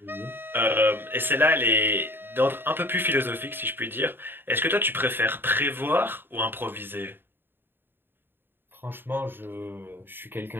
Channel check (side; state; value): left; late; 0.099 ms